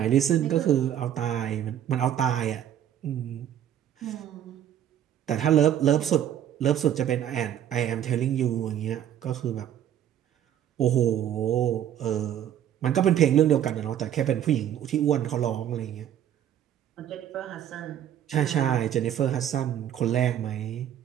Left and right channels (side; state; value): left; quieter; 10.5 dB